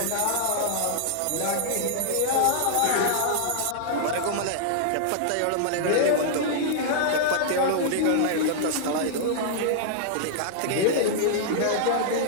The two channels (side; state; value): both; different; correlation -0.01